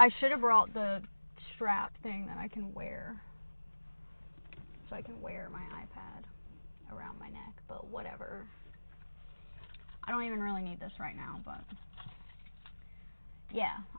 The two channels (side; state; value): both; inverted; correlation -1.00